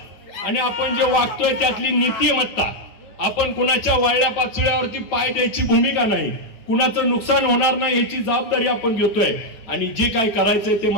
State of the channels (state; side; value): late; right; 9.1 ms